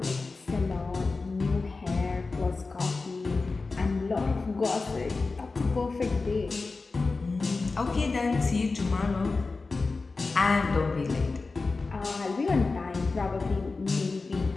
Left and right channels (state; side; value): quieter; right; 3.9 dB